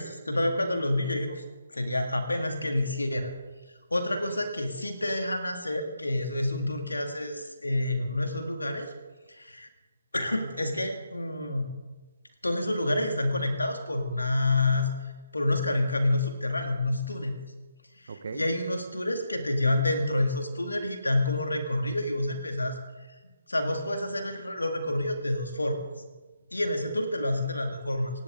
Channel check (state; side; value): inverted; both; correlation -0.83